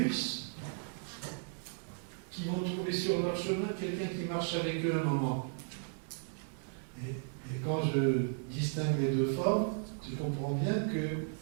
qui vont trouver sur leur chemin quelqu'un qui marche avec eux un moment? Et quand je distingue les deux formes, je comprends bien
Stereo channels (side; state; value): left; silent; 54 dB below the other